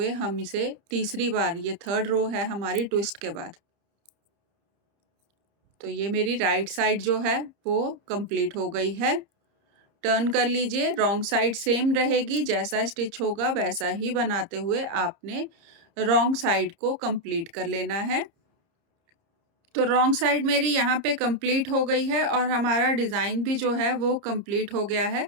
हम इसे तीसरी बार, ये थर्ड रो है हमारी ट्विस्ट के बाद। तो ये मेरी राइट साइड जो है वो कंप्लीट हो गई है। टर्न कर लीजिए, रॉन्ग साइड सेम रहेगी, जैसा स्टिच होगा वैसा ही बनाते हुए आपने रॉन्ग साइड को कंप्लीट कर लेना है। तो रॉन्ग साइड मेरी यहाँ पे कंप्लीट हो गई है और हमारा डिज़ाइन भी जो है वो कंप्लीट हो गया है।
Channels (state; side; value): late; left; 30 ms